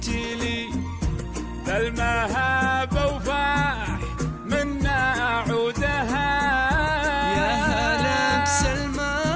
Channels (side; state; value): both; identical; correlation 1.00